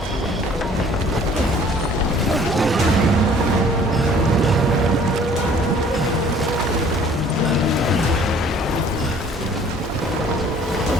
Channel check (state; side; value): normal; both; correlation 0.54